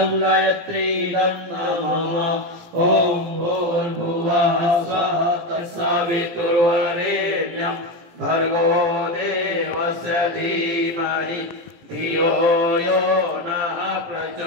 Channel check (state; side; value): late; left; 17 ms